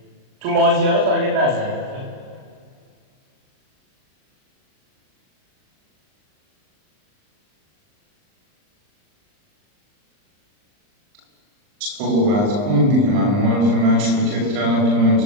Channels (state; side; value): late; left; 39 ms